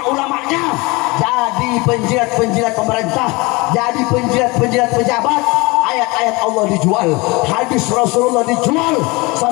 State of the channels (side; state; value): right; quieter; 25.0 dB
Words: jadi penjilat-penjilat pemerintah, jadi penjilat-penjilat pejabat. Ayat-ayat Allah dijual, hadis Rasulullah dijual,